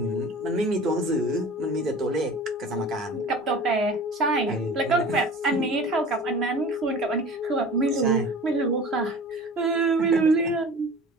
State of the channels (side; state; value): both; normal; correlation 0.40